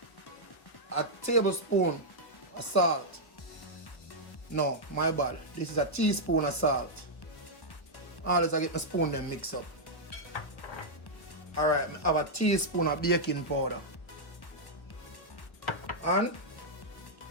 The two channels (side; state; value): right; late; 1.3 ms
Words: a tablespoon of salt. No, my bad. This is a teaspoon of salt. Always I get my spoon then mix up. Alright, I have a teaspoon of baking powder. And